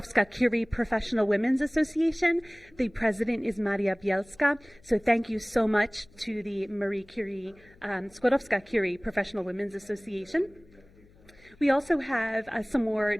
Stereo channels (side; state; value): left; noise; hum, 27 dB below the sound